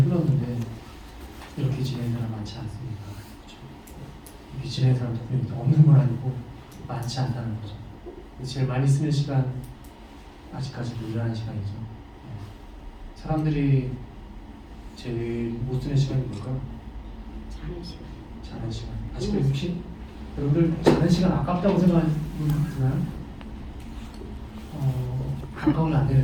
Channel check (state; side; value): identical; both; correlation 1.00